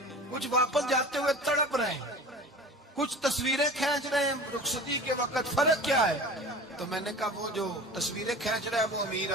کچھ واپس جاتے ہوئے تڑپ رہے ہیں، کچھ تصویریں کھینچ رہے ہیں رخصتی کے وقت، فرق کیا ہے؟ تو میں نے کہا وہ جو تصویریں کھینچ رہا ہے وہ امیر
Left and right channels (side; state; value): both; normal; correlation 0.37